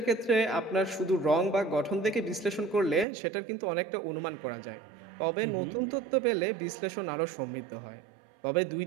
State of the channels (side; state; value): left; drops out; at 3.1 s